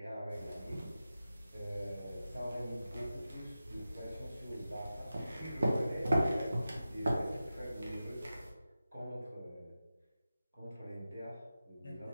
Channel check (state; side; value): inverted; both; correlation -0.93